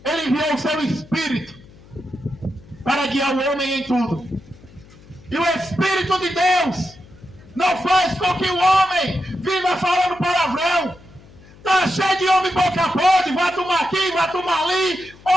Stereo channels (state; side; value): noise; left; hum, 23 dB below the sound